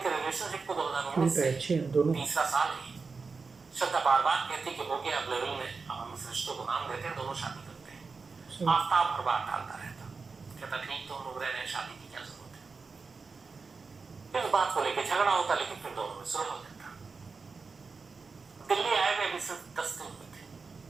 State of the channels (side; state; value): left; quieter; 4.6 dB